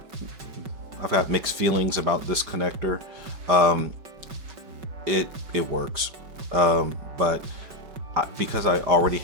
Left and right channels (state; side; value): late; left; 5.3 ms